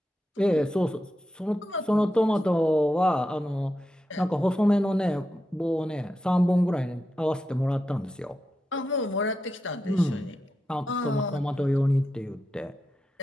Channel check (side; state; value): both; normal; correlation 0.88